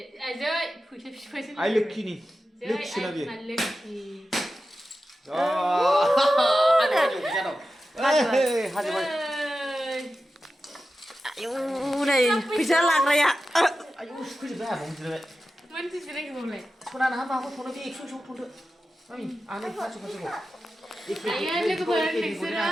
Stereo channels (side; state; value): both; normal; correlation 0.93